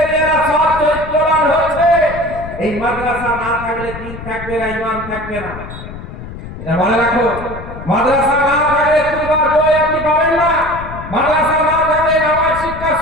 সৎ চরিত্রবান হচ্ছে। এই মাদ্রাসা না থাকলে দিন থাকবে না, ঈমান থাকবে না। এটা মনে রাখো, মাদ্রাসা না থাকলে খুলবার বই আপনি পাবেন না। মাদ্রাসা না থাকলে নামাজ শিক্ষা,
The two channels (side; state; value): left; noise; rumble, 12 dB below the sound